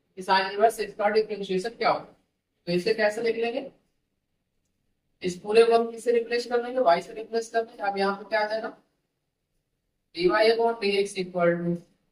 कि साइन इनवर्स x का डिफरेंशिएशन क्या होगा। तो इसे कैसे लिख लेंगे, इस पूरे को हम किससे रिप्लेस कर लेंगे, y से रिप्लेस कर लेंगे। अब यहाँ पे क्या आ जाएगा dy upon dx equal to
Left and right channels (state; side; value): identical; both; correlation 1.00